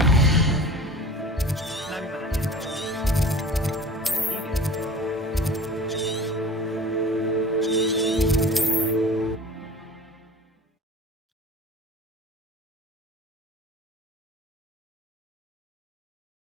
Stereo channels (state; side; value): normal; both; correlation 0.40